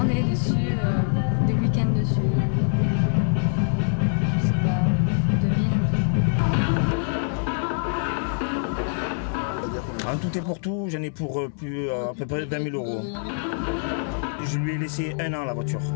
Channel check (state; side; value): silent; right; digital silence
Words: dessus, des week-ends dessus. Je sais pas, 2000. En tout et pour tout, j'en ai pour à peu près 20 000 euros. Je lui ai laissé 1 an la voiture.